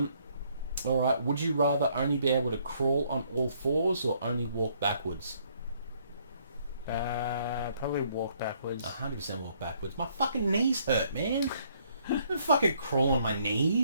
Alright, would you rather only be able to crawl on all fours or only walk backwards? Probably walk backwards. 100% walk backwards. My fucking knees hurt, man. I don't fucking crawl on my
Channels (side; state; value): both; inverted; correlation -0.67